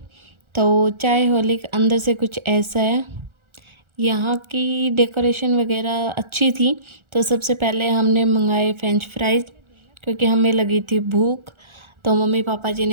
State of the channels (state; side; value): late; left; 1.4 ms